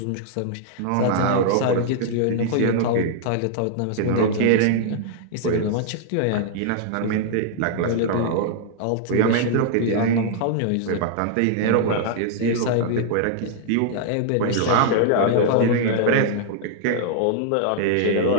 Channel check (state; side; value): different; both; correlation -0.01